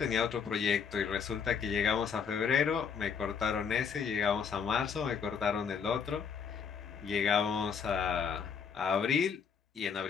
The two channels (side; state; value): right; quieter; 6.6 dB